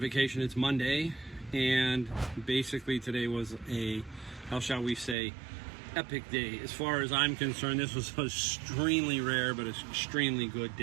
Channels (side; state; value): left; drops out; at 5.2 s